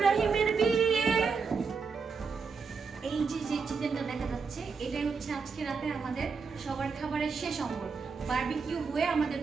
বিয়ে। এই যে চিকেনটা দেখা যাচ্ছে এটাই হচ্ছে আজকে রাতে আমাদের সবার খাবারের শেষ অঙ্গ। বারবিকিউ হয়ে আমাদের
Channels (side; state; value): left; quieter; 5.2 dB